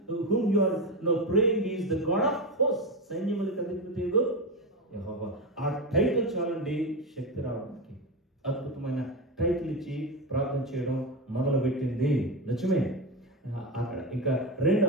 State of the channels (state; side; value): normal; both; correlation 0.15